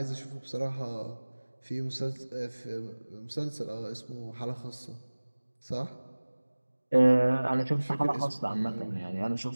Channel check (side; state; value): both; inverted; correlation -1.00